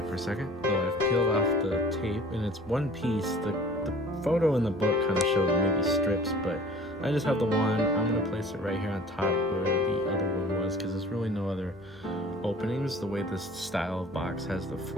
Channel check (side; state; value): both; normal; correlation 0.47